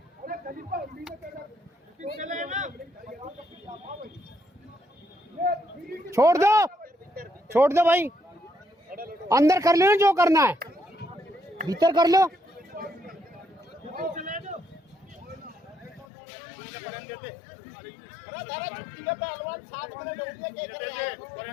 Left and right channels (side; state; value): right; drops out; at 16.1 s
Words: अरे खलीफा हिंदी में कहना चले ना। छोड़ दो भाई। अंदर कर लो ना जो करना है, भीतर कर लो। पहलवान 7 मिनट हो गया, क्या कर रहे हैं?